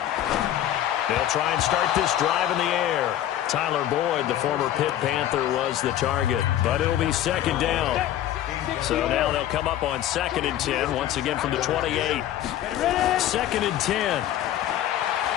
They'll try and start this drive in the air. Tyler Boyd, the former Pitt Panther, was the target, but it'll be 2nd down. So now they'll come up on 2nd and 10, once again from the 28. 2nd and 10.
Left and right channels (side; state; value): right; quieter; 12.2 dB